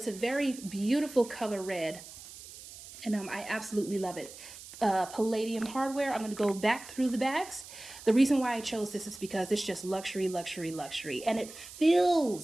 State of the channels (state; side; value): noise; right; hiss, 16 dB below the sound